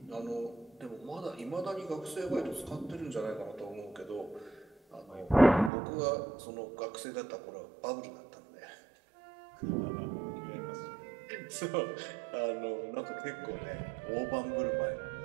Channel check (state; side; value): drops out; left; at 5.7 s